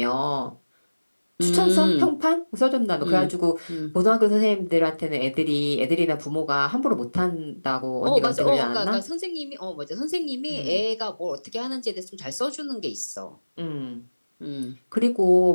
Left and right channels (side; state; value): both; inverted; correlation -1.00